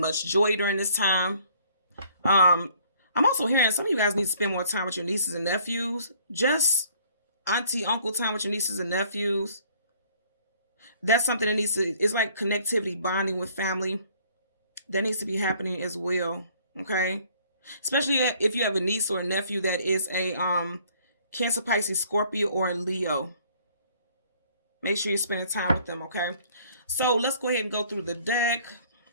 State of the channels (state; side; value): inverted; both; correlation -0.58